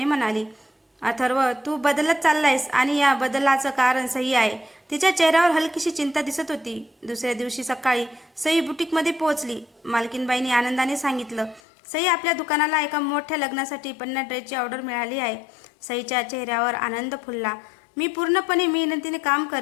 म्हणाली, अथर्व, तू बदलत चाललायस आणि या बदलाचं कारण सई आहे. तिच्या चेहऱ्यावर हलकीशी चिंता दिसत होती. दुसऱ्या दिवशी सकाळी सई बुटीकमध्ये पोहोचली. मालकीनबाईंनी आनंदाने सांगितलं, सई, आपल्या दुकानाला एका मोठ्या लग्नासाठी 50 ड्रेसची ऑर्डर मिळाली आहे. सईच्या चेहऱ्यावर आनंद फुलला. मी पूर्णपणे मेहनतीने काम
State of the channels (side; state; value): right; drops out; at 11.6 s